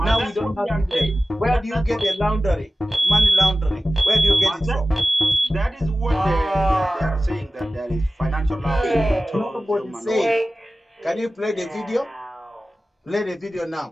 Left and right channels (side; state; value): both; normal; correlation 0.95